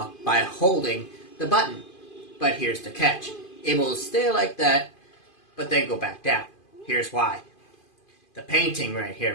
by holding the button. But here's the catch. It will stay like that, but then go back down. Here's why. The painting right here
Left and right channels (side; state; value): right; late; 2.5 ms